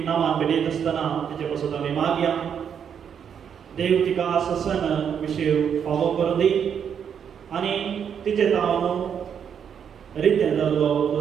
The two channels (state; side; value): quieter; left; 7.9 dB